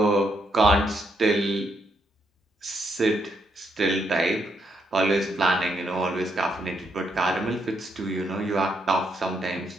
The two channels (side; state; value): both; normal; correlation 0.77